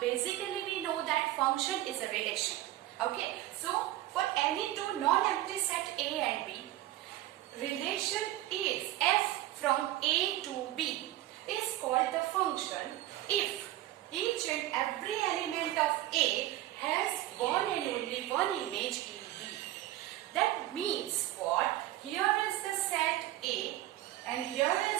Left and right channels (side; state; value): left; quieter; 15.2 dB